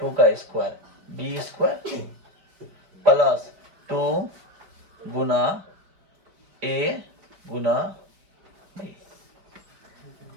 का स्क्वायर बी स्क्वायर प्लस 2 गुना ए गुना बी।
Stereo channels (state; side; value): late; left; 5.2 ms